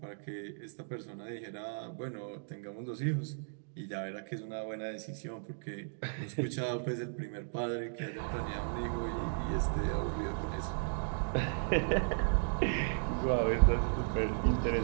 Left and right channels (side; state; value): left; silent; digital silence